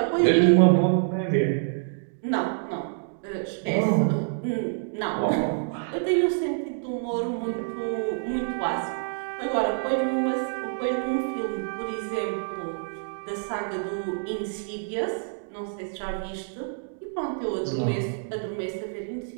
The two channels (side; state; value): left; silent; digital silence